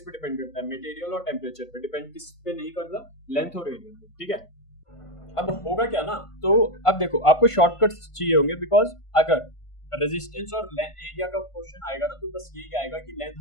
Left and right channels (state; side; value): late; right; 1.5 ms